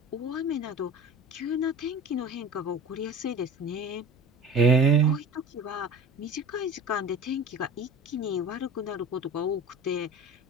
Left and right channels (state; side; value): normal; both; correlation 0.39